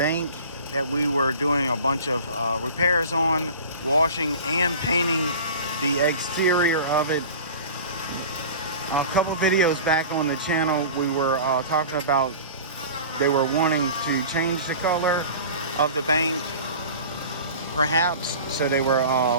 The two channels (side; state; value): both; inverted; correlation -0.38